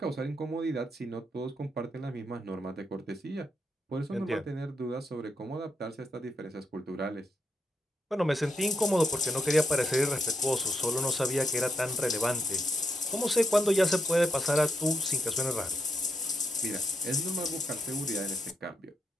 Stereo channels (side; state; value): both; normal; correlation 0.79